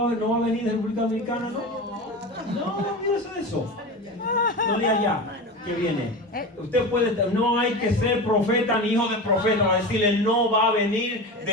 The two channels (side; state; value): both; normal; correlation 0.27